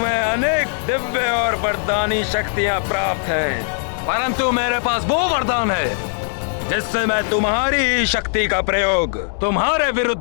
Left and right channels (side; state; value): right; silent; digital silence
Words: दिव्य और वरदानी शक्तियां प्राप्त हैं, परंतु मेरे पास वो वरदान है जिससे मैं तुम्हारी ही शक्ति का प्रयोग तुम्हारे